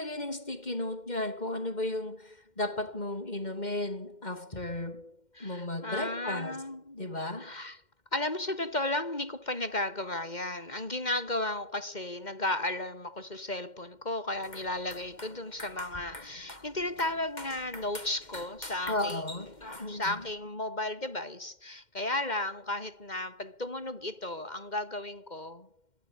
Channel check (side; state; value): right; late; 2.1 ms